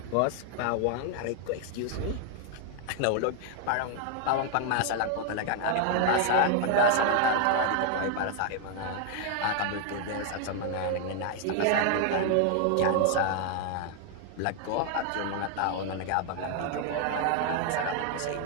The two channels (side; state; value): both; different; correlation 0.00